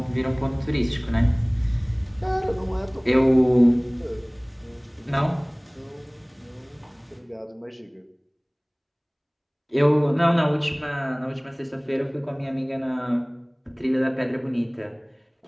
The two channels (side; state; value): both; identical; correlation 1.00